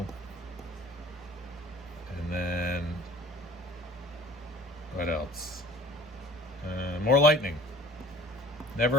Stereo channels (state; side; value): normal; both; correlation 0.48